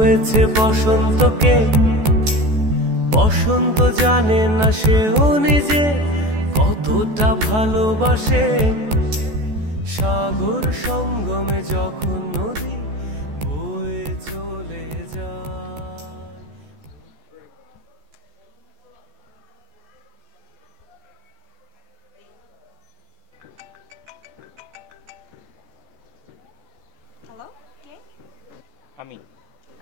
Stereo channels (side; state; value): left; late; 14 ms